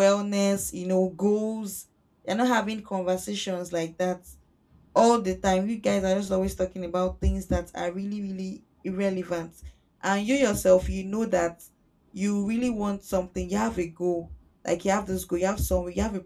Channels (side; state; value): both; identical; correlation 1.00